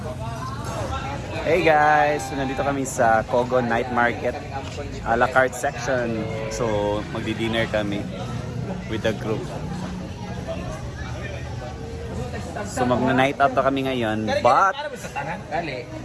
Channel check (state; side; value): identical; both; correlation 1.00